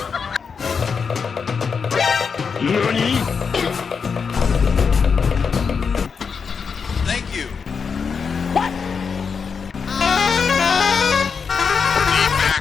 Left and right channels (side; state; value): right; quieter; 5.8 dB